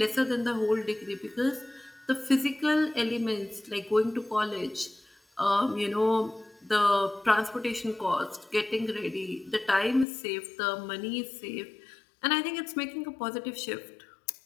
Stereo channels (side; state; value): right; drops out; at 10.1 s